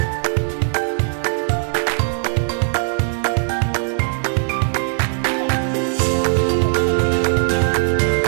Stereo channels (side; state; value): left; silent; digital silence